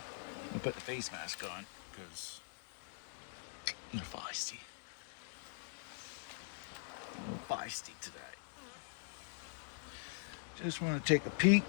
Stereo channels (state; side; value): silent; right; digital silence